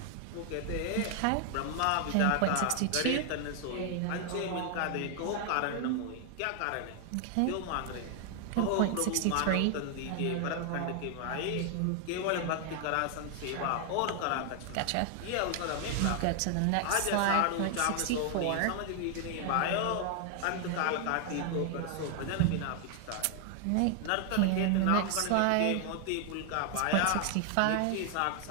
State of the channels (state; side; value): different; both; correlation 0.00